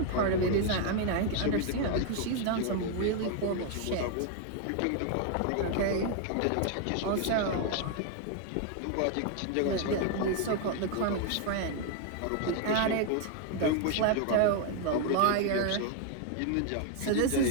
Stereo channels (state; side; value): different; both; correlation 0.01